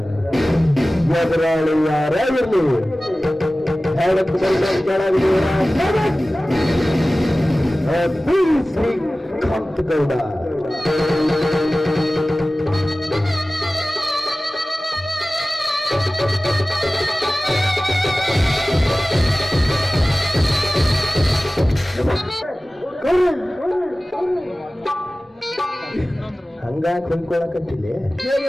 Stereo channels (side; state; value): both; normal; correlation 0.97